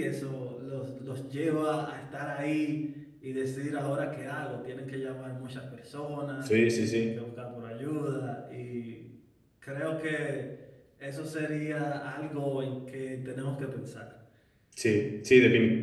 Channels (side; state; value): both; identical; correlation 1.00